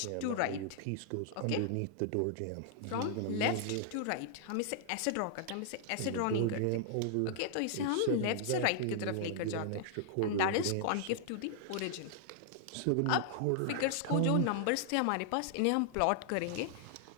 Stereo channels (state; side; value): different; both; correlation -0.01